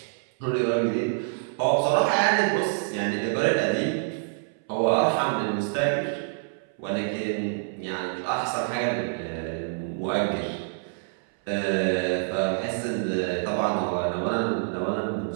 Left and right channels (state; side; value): silent; left; 60 dB below the other